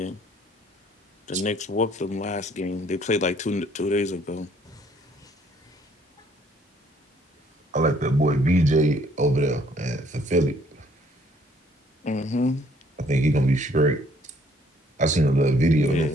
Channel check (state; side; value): normal; both; correlation 0.62